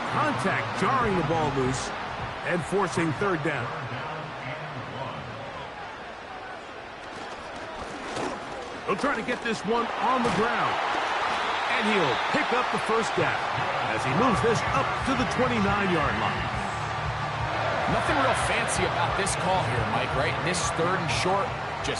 contact jarring the ball loose and forcing third down. He'll try to get this one on the ground. And he'll pick up the first down as he moves this up to the 29-yard line. Nothing real fancy about this call here, Mike, right? This 3rd and short,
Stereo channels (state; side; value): identical; both; correlation 1.00